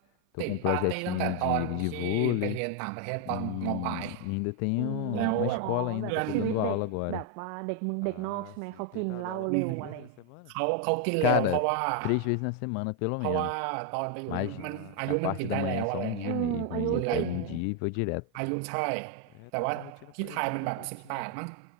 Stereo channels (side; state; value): both; different; correlation 0.01